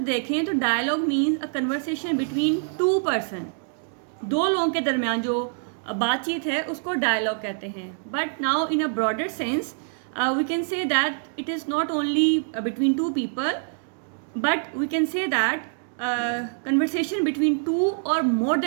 देखें तो dialogue means a conversation between two person, दो लोगों के दरमियान जो बातचीत है उसको डायलॉग कहते हैं। But now in a broader sense we can say that it is not only between two people, but we can say that conversation between two or more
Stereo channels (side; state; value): left; silent; digital silence